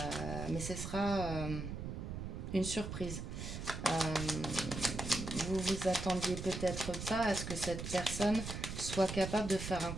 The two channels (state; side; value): noise; right; rumble, 6 dB below the sound